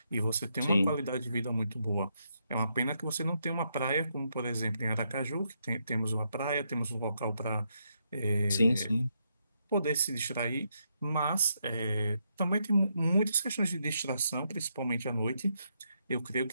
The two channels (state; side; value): inverted; both; correlation -0.79